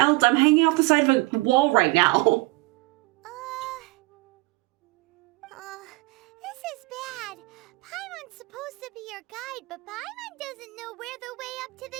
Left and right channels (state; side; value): quieter; left; 23.5 dB